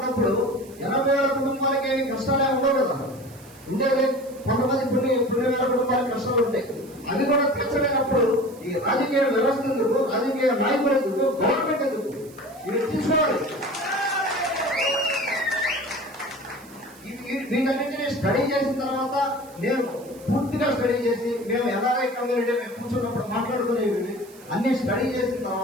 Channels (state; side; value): noise; right; hiss, 23 dB below the sound